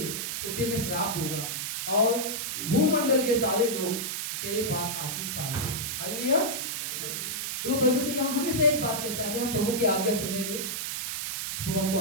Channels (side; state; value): right; noise; hiss, 3 dB below the sound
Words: उसे मैं श्राप दूंगा, और भूमंडल के सारे लोग तेरे पास आशीष पाएंगे। हालेलुया। तो परमेश्वर यहाँ हमेशा एक बात कहता है कि हम प्रभु की आज्ञा सुनेंगे तो वो हमको